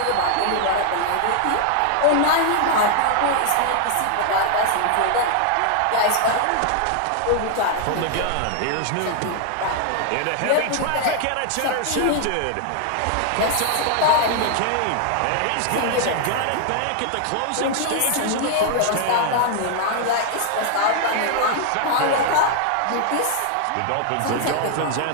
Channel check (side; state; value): both; different; correlation 0.00